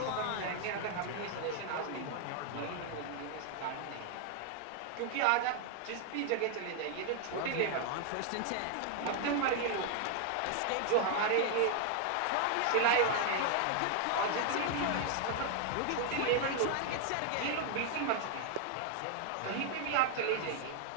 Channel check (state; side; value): different; both; correlation 0.00